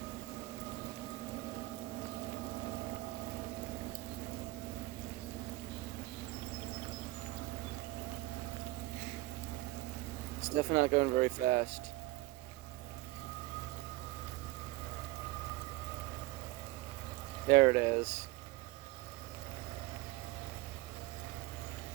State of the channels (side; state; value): left; quieter; 19.6 dB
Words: It's definitely not going very fast. There it is.